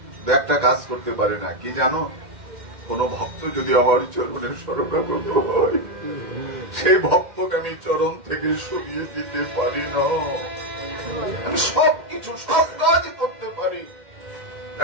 একটা কাজ করতে পারি না। কি জানো? কোন ভক্ত যদি আমার চরণের শরণাগত হয়, সেই ভক্তকে আমি চরণ থেকে সরিয়ে দিতে পারি না। আমি সবকিছু, সব কাজ করতে পারি,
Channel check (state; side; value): late; left; 2.1 ms